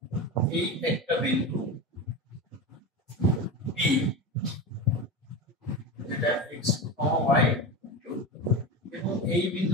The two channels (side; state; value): both; normal; correlation 0.23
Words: এই একটা বিন্দু b, যেটা x2, y2, এবং এই